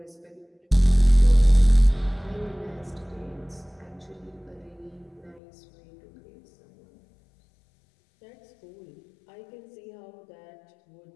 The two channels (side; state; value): right; drops out; at 5.4 s